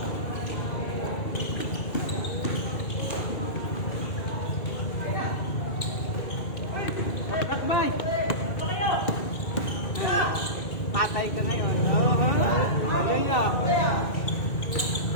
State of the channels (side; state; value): right; late; 2.4 ms